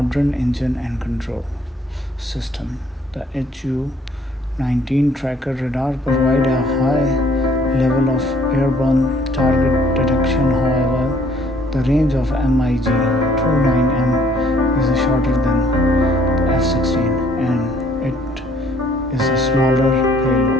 engine and control system. The Su-19 tracker radar provides a high level of airborne target detection. However, the range of MiG-29M is shorter than the F-16 and it is a smaller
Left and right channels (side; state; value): both; normal; correlation 0.61